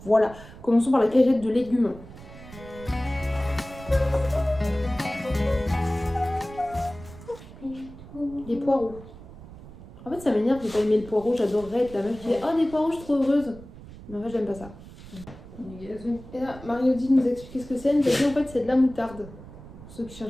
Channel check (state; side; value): noise; right; rumble, 17 dB below the sound